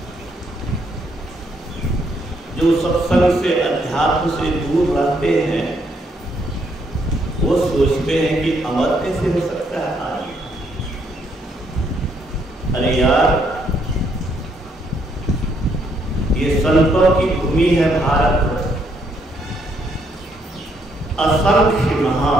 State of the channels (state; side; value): normal; both; correlation 0.72